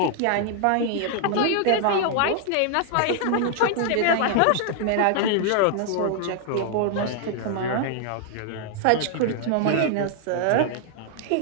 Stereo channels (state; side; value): different; both; correlation 0.00